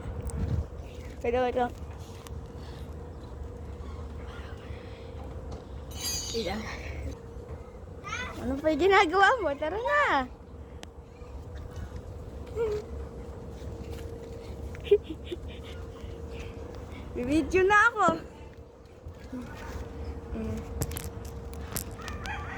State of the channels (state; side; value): identical; both; correlation 1.00